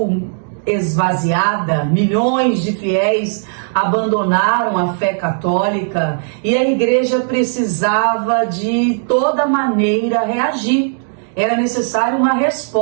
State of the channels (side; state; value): left; silent; digital silence